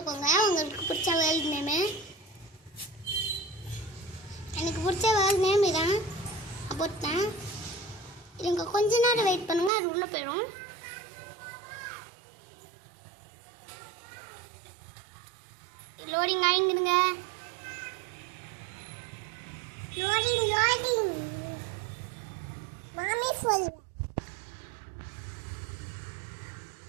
உங்களுக்கு பிடிச்ச வேர்ல்ட் நேம். எனக்கு பிடிச்ச வேர்ல்ட் நேம் இதான் போட்டேன். இதுங்க கொஞ்ச நேரம் வெயிட் பண்ணுங்க, அது உள்ள போயிடும். லோடிங் ஆயிடுங்க. லோடிங் மாமி சொல்ல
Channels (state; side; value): drops out; left; at 9.7 s